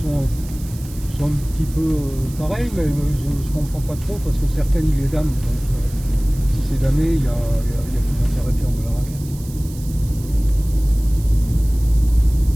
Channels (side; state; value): right; noise; hiss, 19 dB below the sound